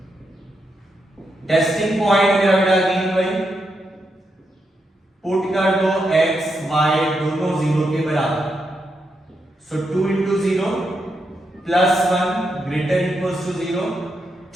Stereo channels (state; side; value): normal; both; correlation 0.83